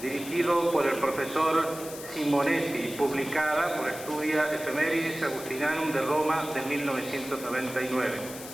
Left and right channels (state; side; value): noise; left; hiss, 13 dB below the sound